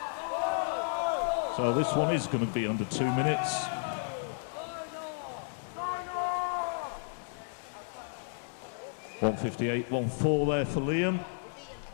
So this one is going to be under 2 minutes. 1:58, 1:04 there for Liam.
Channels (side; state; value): right; silent; digital silence